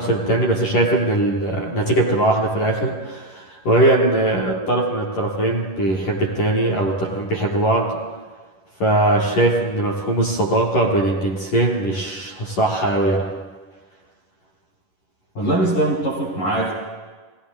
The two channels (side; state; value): right; late; 11 ms